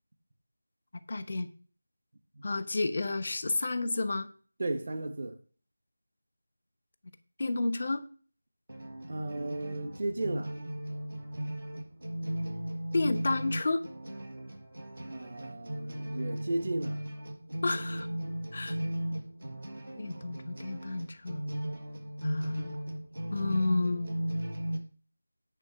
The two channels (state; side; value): inverted; both; correlation -0.97